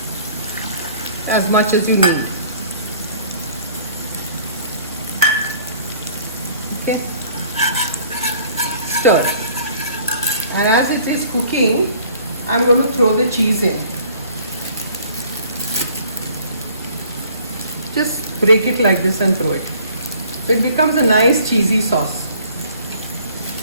As much as you need. Okay. Stir. And as it is cooking, I'm going to throw the cheese in. Just break it like this and throw it. So it becomes a nice cheesy sauce.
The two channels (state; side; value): inverted; both; correlation -0.55